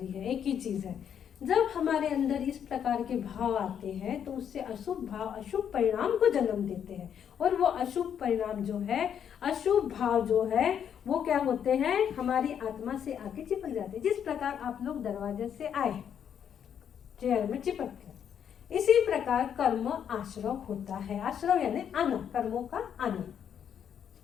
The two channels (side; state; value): right; quieter; 8.6 dB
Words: ही है, एक ही चीज है। जब हमारे अंदर इस प्रकार के भाव आते हैं तो उससे अशुभ भाव अशुभ परिणाम को जन्म देते हैं, और वो अशुभ परिणाम जो है, अशुभ भाव जो है, वो क्या होते हैं? हमारी आत्मा से आके चिपक जाते हैं। जिस प्रकार आप लोग दरवाजे से आए, चेयर में चिपक गए, इसी प्रकार कर्म आश्रव होता है। आश्रव यानी आना, कर्मों का आना।